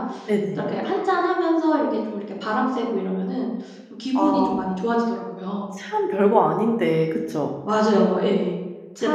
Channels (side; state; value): both; identical; correlation 1.00